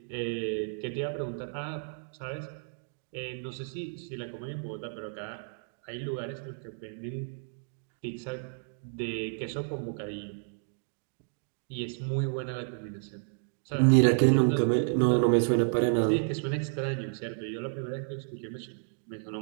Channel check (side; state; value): left; silent; digital silence